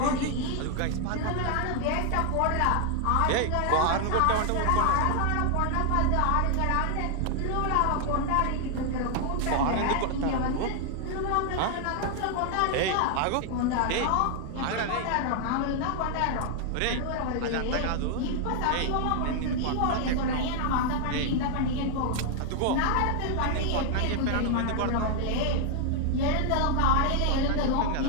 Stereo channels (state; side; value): different; both; correlation 0.00